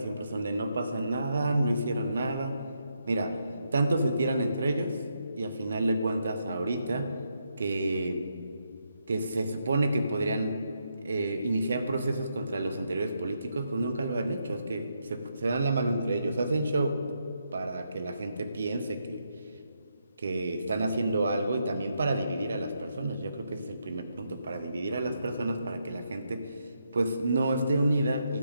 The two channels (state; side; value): inverted; both; correlation -0.80